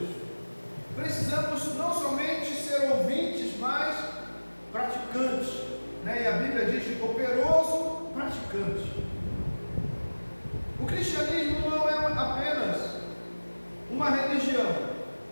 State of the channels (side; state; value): both; inverted; correlation -1.00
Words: Precisamos não somente ser ouvintes, mas praticantes, né? E a Bíblia diz operoso praticante. O cristianismo não é apenas uma religião,